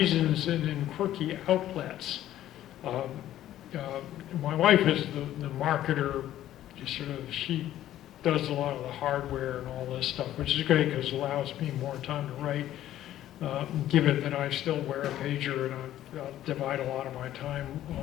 and in quirky outlets. Um, my wife is the marketer, she does a lot of the hardware and all this stuff, which is great because it allows me more time to write. Given that I still wear a pager and I'll divide a lot of my time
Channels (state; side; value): quieter; right; 12.8 dB